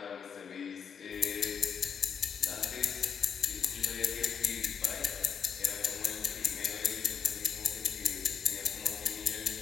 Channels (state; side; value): quieter; right; 7.0 dB